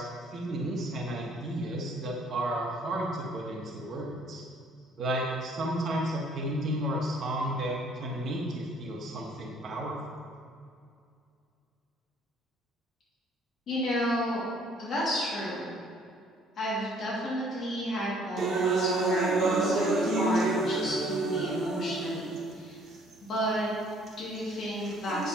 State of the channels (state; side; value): normal; both; correlation 0.59